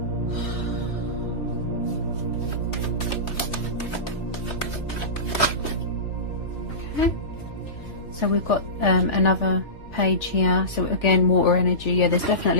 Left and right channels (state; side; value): late; right; 3.4 ms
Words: Okay. So we've got another page here. So again, water energy. Yeah, there's